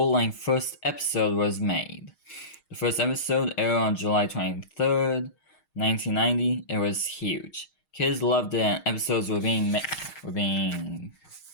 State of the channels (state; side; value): late; right; 6.4 ms